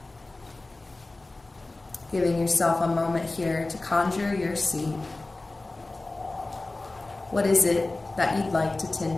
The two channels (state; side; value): quieter; right; 3.1 dB